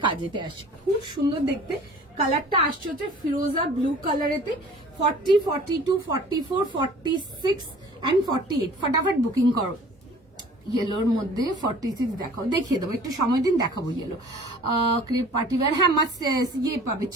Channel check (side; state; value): both; normal; correlation 0.48